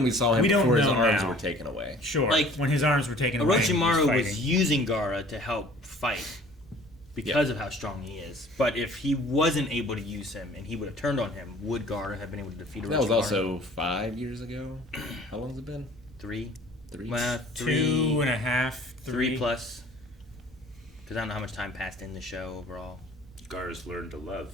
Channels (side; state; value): both; normal; correlation 0.50